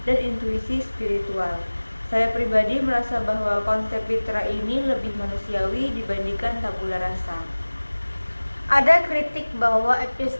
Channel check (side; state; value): both; inverted; correlation -1.00